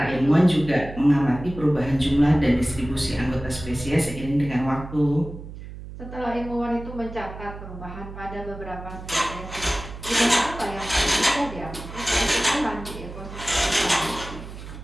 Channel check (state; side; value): noise; right; hum, 12 dB below the sound